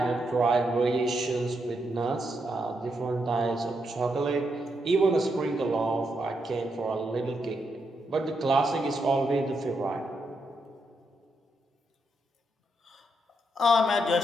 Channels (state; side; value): normal; both; correlation 0.81